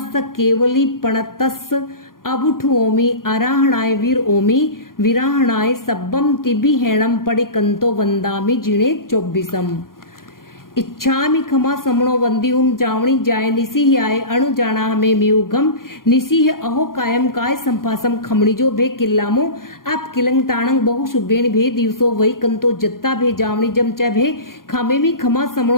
केवली पणतस्, अबुठ ओमी आराहणाय वीर ओमी, विराहणाय सब्बम तिबिहेणम पड़िकंतो वंदामि जिणे 24। इच्छामि खमा समणो वंदियुम जावणी जाय निसिह आय अणु जाना हमें मियुगम, निसिह अहो कायम काय संपासम खमणी जो भे किल्लामो, आप किलंग ताणंग बहु शुभेण भे दिवसो वही कंतो जत्ता भे जावणी जम च भे, खामे मी खमा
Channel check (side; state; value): right; late; 0.91 ms